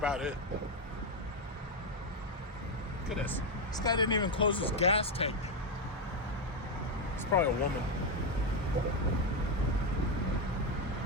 it. Look at this. This guy didn't even close his gas tank. It's probably a woman.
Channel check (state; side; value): normal; both; correlation 0.07